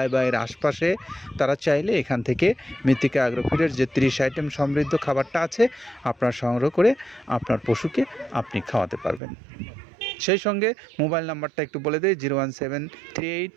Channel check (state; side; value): drops out; left; at 9.2 s